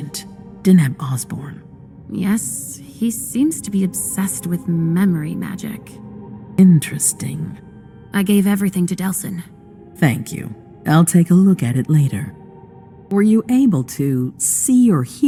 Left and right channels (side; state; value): both; identical; correlation 1.00